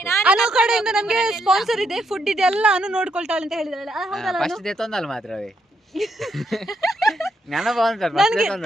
ಅನು ಕಡೆಯಿಂದ ನಮಗೆ ಸ್ಪಾನ್ಸರ್ ಇದೆ ಫುಡ್ ಇದೆ ಎಲ್ಲ ಅನು ನೋಡ್ಕೊಳ್ತಾಳೆ ಅಂತ ಹೇಳಿದಾಳೆ ಹೌದಲ್ಲ ಫಸ್ಟ್ ದೇ ತೊಂದಲ್ಲ ಮಾತ್ರವೇ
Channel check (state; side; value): normal; both; correlation 0.77